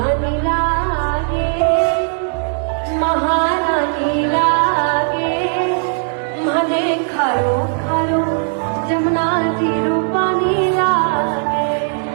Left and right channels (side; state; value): left; silent; 68 dB below the other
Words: लागे, महारानी लागे, मने खारो खारो जमुना तीरो पानी लागे।